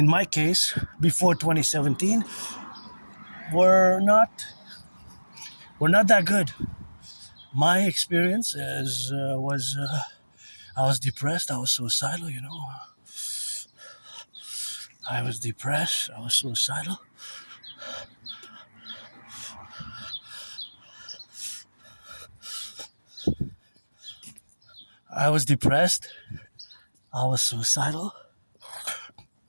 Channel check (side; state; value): both; inverted; correlation -1.00